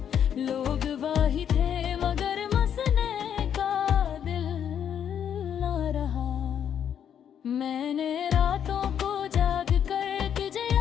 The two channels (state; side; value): quieter; right; 8.9 dB